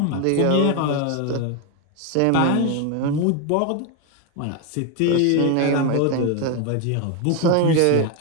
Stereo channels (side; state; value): both; different; correlation 0.01